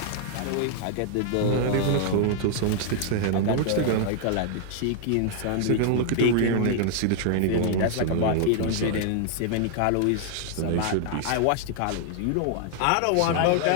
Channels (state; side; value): different; both; correlation 0.00